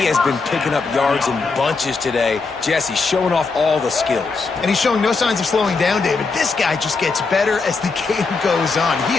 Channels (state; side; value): quieter; right; 4.3 dB